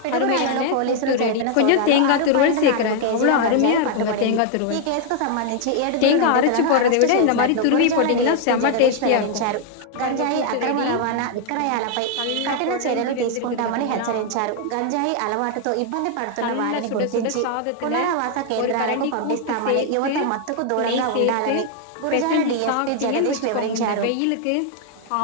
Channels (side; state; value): both; different; correlation 0.00